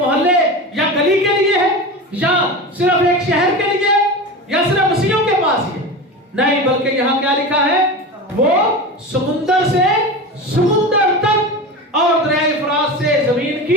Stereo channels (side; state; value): both; normal; correlation 0.27